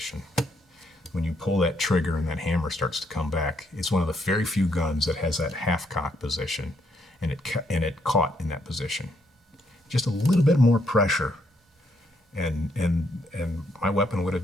When you pull that trigger and that hammer starts to come back, it's one of the very few guns that has that half-cock position, and it caught in that position. Just a little bit more pressure, and my weapon would have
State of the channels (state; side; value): normal; both; correlation 0.73